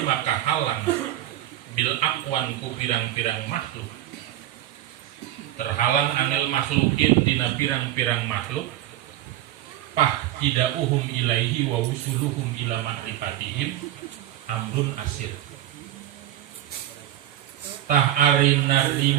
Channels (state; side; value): quieter; left; 13.3 dB